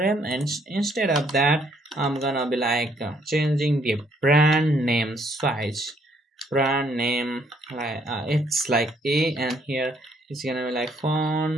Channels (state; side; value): normal; both; correlation 0.68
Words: and instead of that I'm gonna be like changing the brand name size. Brand name like it's like A, and here it's gonna be like